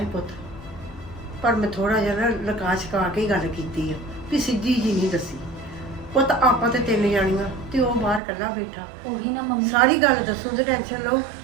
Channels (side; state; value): left; drops out; at 8.2 s